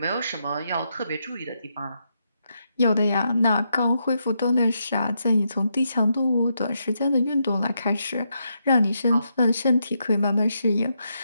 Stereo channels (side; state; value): both; inverted; correlation -0.81